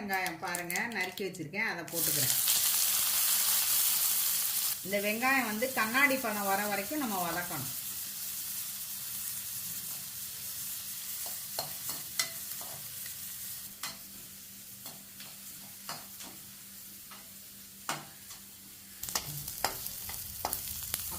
பாருங்கள் நறுக்கி வச்சுருக்கேன், அதை போட்டுக்கிறேன். இந்த வெங்காயம் கண்ணாடி பழம் வர வரைக்கும் நம்ம வதக்கணும்.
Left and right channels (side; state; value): both; identical; correlation 1.00